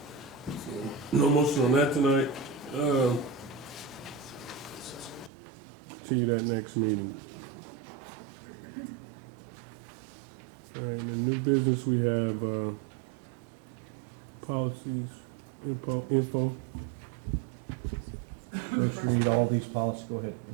No motion on that tonight. See you that next meeting. All right, in new business, we have policies, info. Let's read all these policies. Go ahead.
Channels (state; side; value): drops out; left; at 5.3 s